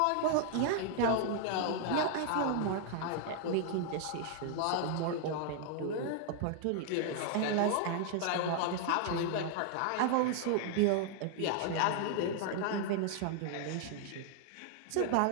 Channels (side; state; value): both; different; correlation 0.00